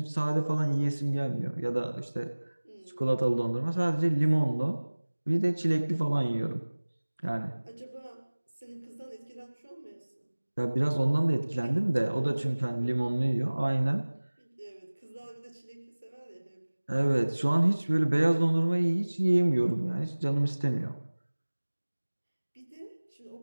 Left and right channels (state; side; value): inverted; both; correlation -1.00